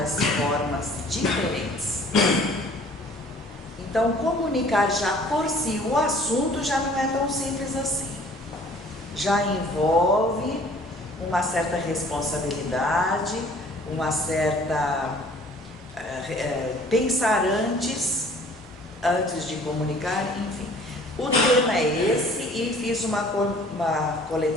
formas diferentes. Então, comunicar já por si, o assunto já não é tão simples assim. Já envolve uma certa responsabilidade, uma certa pensar antes de comunicar, enfim. O tema é esse e fiz uma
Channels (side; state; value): both; normal; correlation 0.53